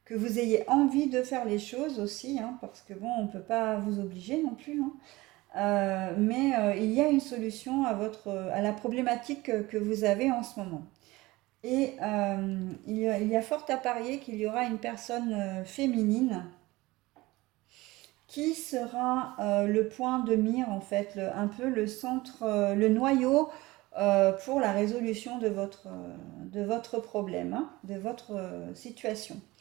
que vous ayez envie de faire les choses aussi, hein, parce que bon, on ne peut pas vous obliger non plus, hein. Mais il y a une solution à la problématique que vous avez en ce moment. Et il y a fort à parier qu'il y aura une personne féminine qui sera le point de mire, en fait, un peu le centre, le noyau pour la résolution de votre problème, hein, de votre situation.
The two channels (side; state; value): left; quieter; 20.3 dB